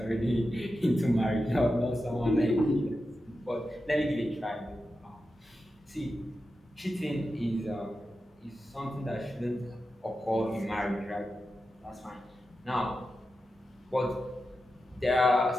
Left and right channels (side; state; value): both; normal; correlation 0.91